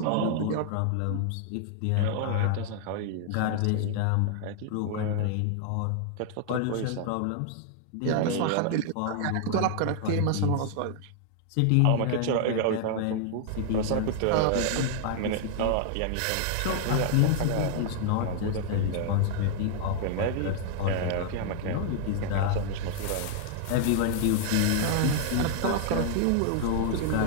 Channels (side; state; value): both; different; correlation -0.01